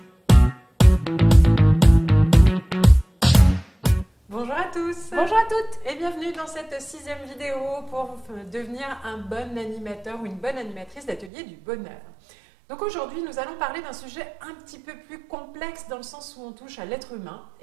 à tous. Bonjour à toutes. Et bienvenue dans cette 6e vidéo pour devenir un bon animateur ou une bonne animatrice d'atelier du bonheur. Donc aujourd'hui, nous allons parler d'un sujet un petit peu plus complexe dans le sens où on touche à l'être humain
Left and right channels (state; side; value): drops out; left; at 11.3 s